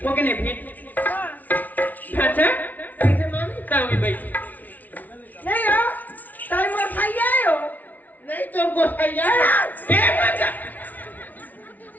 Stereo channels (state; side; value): late; right; 0.077 ms